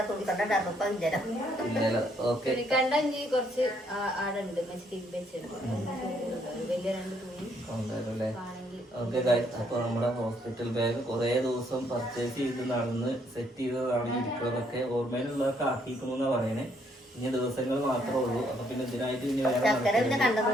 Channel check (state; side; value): normal; both; correlation 0.70